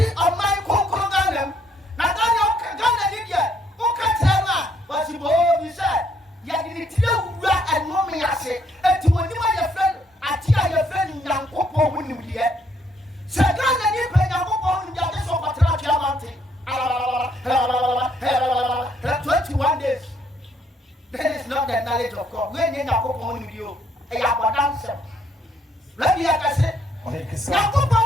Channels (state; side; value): normal; both; correlation 0.69